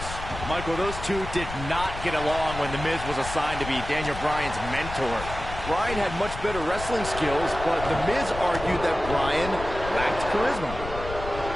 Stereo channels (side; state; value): left; noise; rumble, 9 dB below the sound